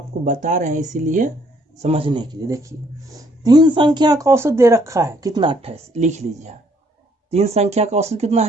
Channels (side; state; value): both; normal; correlation 0.66